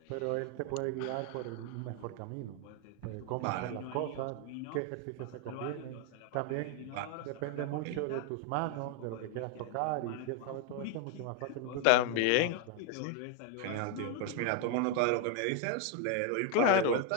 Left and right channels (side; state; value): both; different; correlation 0.01